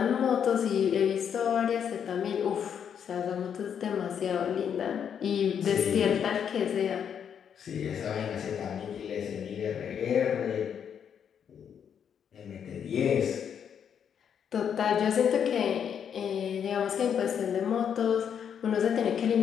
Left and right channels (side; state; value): right; quieter; 8.1 dB